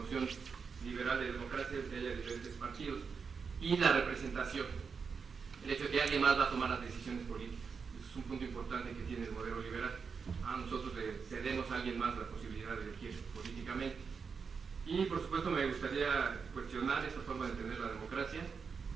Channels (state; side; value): quieter; left; 5.6 dB